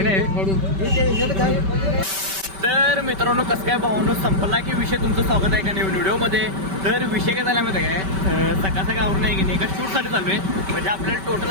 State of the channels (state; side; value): late; left; 5.2 ms